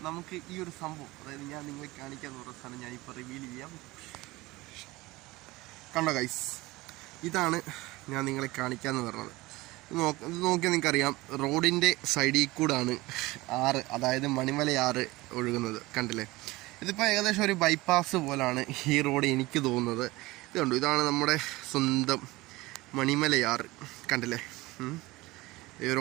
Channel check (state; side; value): quieter; left; 20.5 dB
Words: നമുക്ക് ഈ ഒരു സംഭവം, അതായത് ഞാൻ നിങ്ങളെ കാണിക്കാമെന്ന് പറഞ്ഞ സാധനം ഞാനിപ്പോൾ റിവീൽ ചെയ്യാം. കണ്ടോ ഗൈസ്, ഇതാണ് ഞാൻ നിങ്ങളെ കാണിക്കാമെന്ന് പറഞ്ഞത്. നോക്കിയാൽ നിങ്ങൾക്കറിയാം റോഡിൻ്റെ സൈഡിൽ കൂടാണ് ആറ്, അതായത് മണിമലയാറ് ഒഴുകുന്നത്. കണ്ടില്ലേ? ഇതിപ്പോൾ ഏകദേശം ഒരു ബൈപ്പാസ് പോലാണ് ഈ റോഡ് എനിക്ക് തോന്നുന്നത്. ഇത് കണ്ടു, ഇതാണ് നമ്മുടെ സ്വന്തം മണിമലയാറ്. കണ്ടില്ലേ? ഈ ഒരു